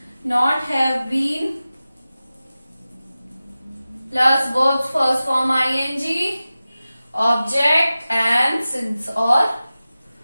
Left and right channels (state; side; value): inverted; both; correlation -0.96